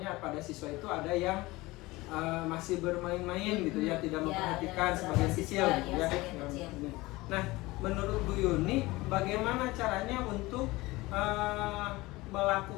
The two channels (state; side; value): quieter; right; 20.7 dB